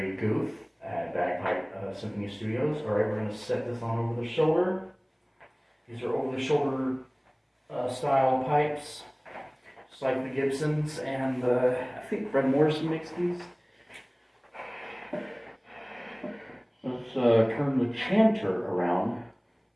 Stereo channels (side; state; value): both; identical; correlation 1.00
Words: Guth at Bagpipe Symphony Studios. Alright, we're going to set this on over the shoulder. These are over the shoulder style pipes. Just like the Gibsons, and I think Fred Morrison makes these. Let's turn the chanter around.